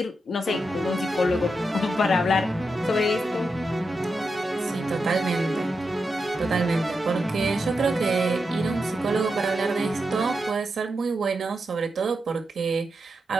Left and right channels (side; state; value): both; normal; correlation 0.87